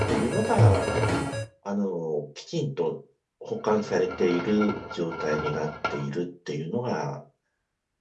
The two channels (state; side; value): identical; both; correlation 1.00